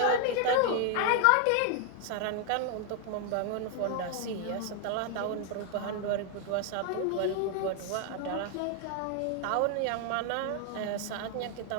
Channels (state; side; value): different; both; correlation 0.00